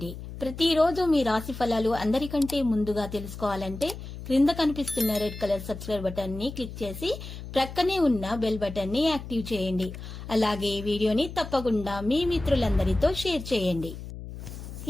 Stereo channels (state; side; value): noise; left; hum, 11 dB below the sound